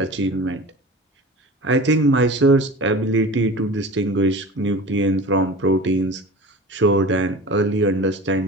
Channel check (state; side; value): normal; both; correlation 0.36